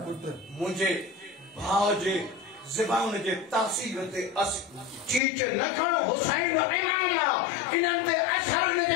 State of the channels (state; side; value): drops out; right; at 5.2 s